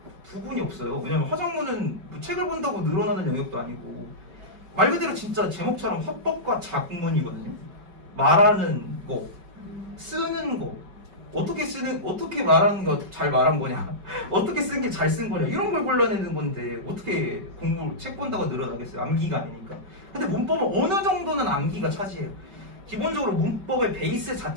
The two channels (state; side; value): late; left; 5.2 ms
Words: 부분이 없어요. 왜냐면 화상문은 뭐 책을 본다고 늘어나는 영역도 아니고 말 그대로 진짜 제목처럼 화법과 작문이거든요. 말하는 거, 쓰는 거, 어떻게 말하는 게 잘 말한 거냐, 어떻게 쓴 게 잘 쓴 거냐 이런 걸 골라내는 건데 어떻게 공부 책 본다고 늘어나겠어요? 암기가 아니니까. 근데 문법은 어느 정도는 암기가 차지해요. 기본적으로 문법의 베이스